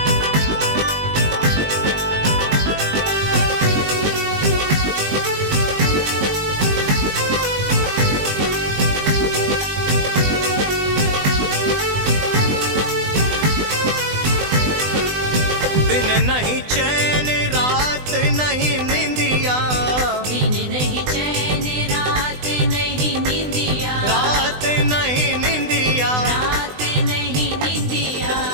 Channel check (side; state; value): left; late; 20 ms